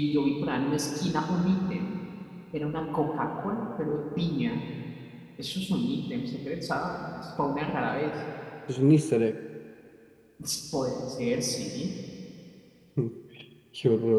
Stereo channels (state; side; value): identical; both; correlation 1.00